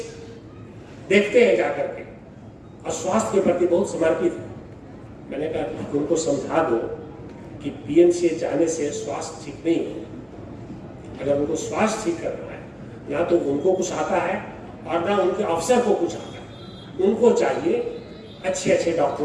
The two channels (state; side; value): identical; both; correlation 1.00